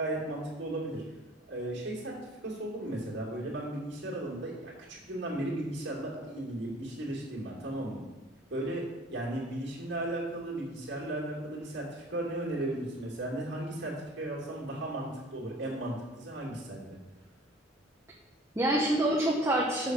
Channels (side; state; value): both; normal; correlation 0.50